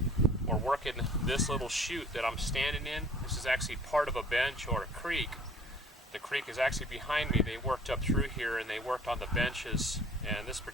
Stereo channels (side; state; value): both; normal; correlation 0.53